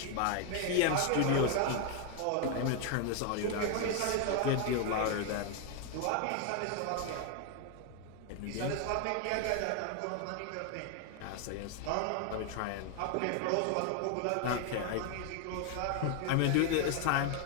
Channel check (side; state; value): both; different; correlation 0.01